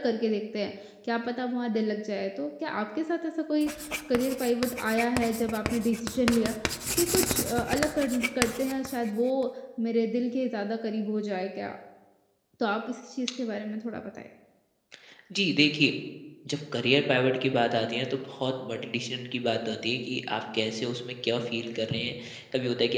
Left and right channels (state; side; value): identical; both; correlation 1.00